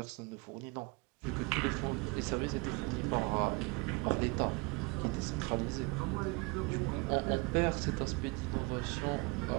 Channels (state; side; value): quieter; left; 26.7 dB